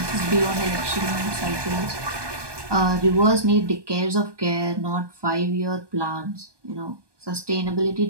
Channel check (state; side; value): late; left; 1.2 ms